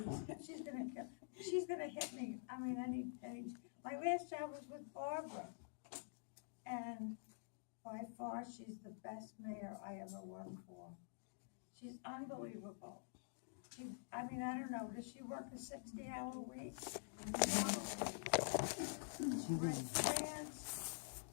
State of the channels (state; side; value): silent; right; digital silence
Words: she's gonna hit me. I mean, my last job was with Barbara, and by far she's the best mayor I ever worked for. She's unbelievable. I don't know, does she work a 60-hour week? She writes grants,